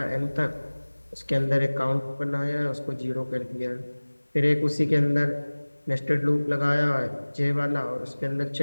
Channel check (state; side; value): inverted; both; correlation -1.00